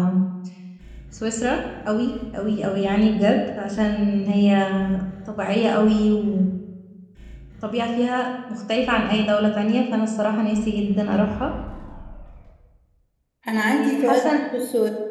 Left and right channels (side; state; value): both; identical; correlation 1.00